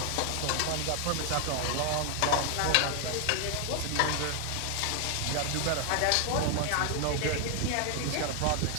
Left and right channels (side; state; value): both; different; correlation 0.00